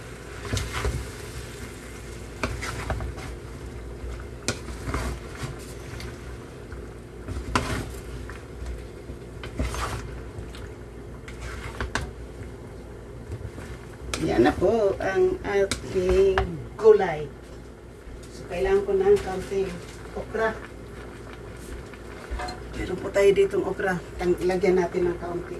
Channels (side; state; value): both; identical; correlation 1.00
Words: Yan na po ang ating gulay. So, kailangan ko ng kaunting okra. Meron po tayo ditong okra. Lagyan natin ng kaunti.